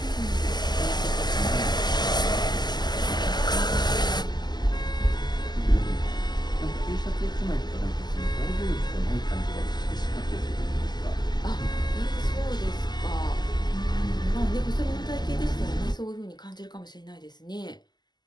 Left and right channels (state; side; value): late; right; 0.21 ms